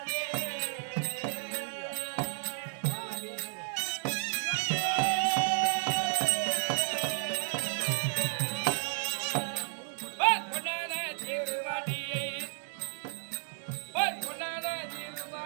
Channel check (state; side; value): silent; left; digital silence